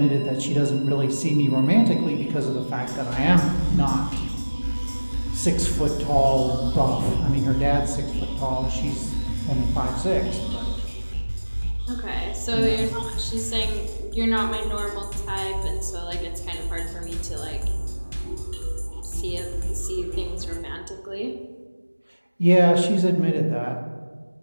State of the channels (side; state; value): both; inverted; correlation -1.00